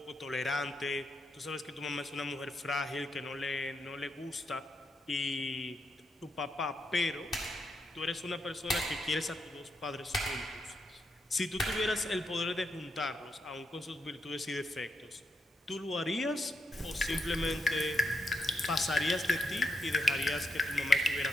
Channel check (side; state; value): both; normal; correlation 0.82